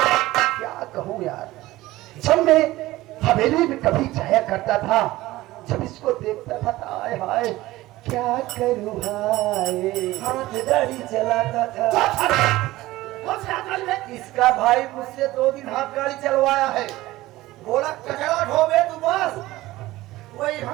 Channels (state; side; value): quieter; left; 17.6 dB